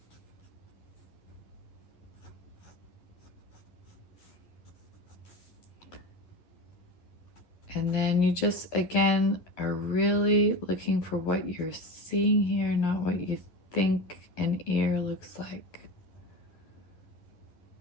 And then you just, again, are really looking for what you're seeing here, not what you think an ear looks like.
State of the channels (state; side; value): late; right; 11 ms